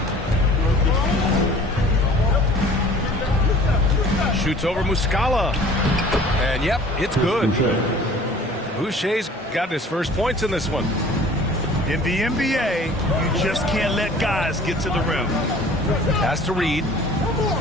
Shoots over Muscala. And yep, it's good. Boucher's got his first points in this one. In the NBA, you just can't let guys get to the rim. Pass to Reed.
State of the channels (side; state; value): both; normal; correlation 0.48